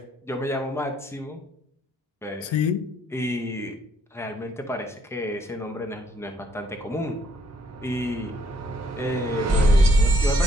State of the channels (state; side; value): normal; both; correlation 0.68